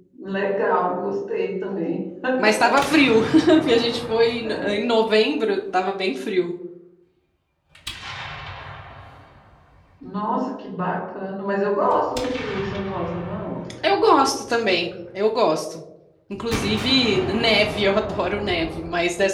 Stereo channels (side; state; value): both; identical; correlation 1.00